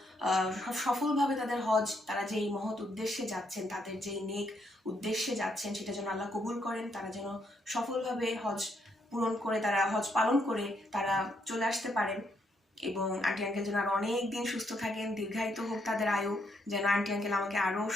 সফলভাবে তাদের হজ, তারা যে এই মহৎ উদ্দেশ্যে যাচ্ছেন, তাদের যে নেক উদ্দেশ্যে যাচ্ছেন, সেটা যেন আল্লাহ কবুল করেন, তারা যেন সফলভাবে হজ পূরণ করে, তারা হজ পালন করে তারা চলে আসতে পারেন। এবং আন্টি আঙ্কেল যেন আরো অনেক দিন সুস্থ থাকেন, দীর্ঘায়িত হোক তাদের আয়ু, যেন আন্টি আঙ্কেল আমাকে আরো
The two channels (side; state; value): both; normal; correlation 0.75